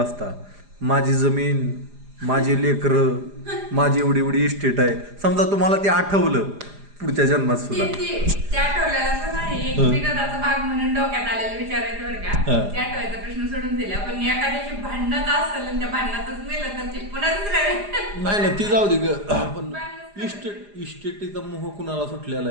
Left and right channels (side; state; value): left; late; 4.9 ms